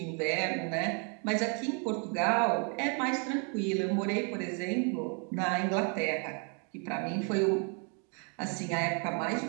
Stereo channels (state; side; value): quieter; left; 38.1 dB